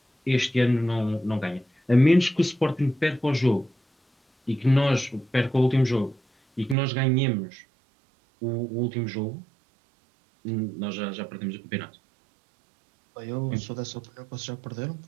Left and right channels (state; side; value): drops out; left; at 6.8 s